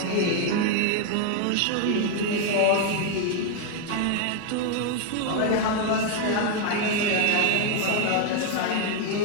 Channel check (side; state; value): both; different; correlation 0.00